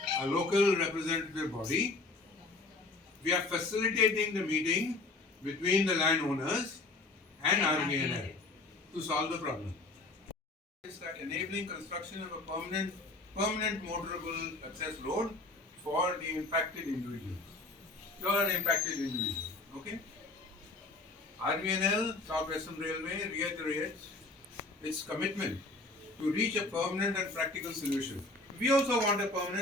a local representative body, we are facilitating the meeting between the landowners and Rvnl to solve the problem. It's like enabling construction of a permanent motorable access road for the impacted individuals. You are an impacted individual, okay? Rvnl, South Western Railway, reiterates its commitment to reach a permanent and practical solution. We also want a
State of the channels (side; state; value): right; quieter; 3.2 dB